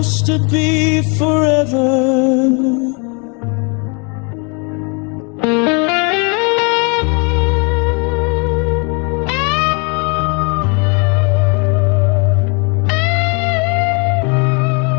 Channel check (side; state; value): right; quieter; 34.0 dB